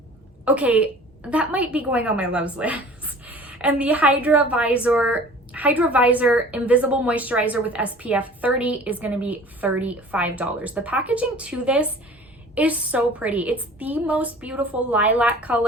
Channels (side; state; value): both; normal; correlation 0.45